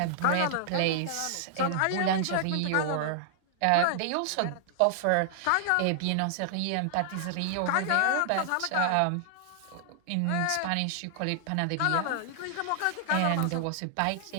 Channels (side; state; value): both; different; correlation -0.01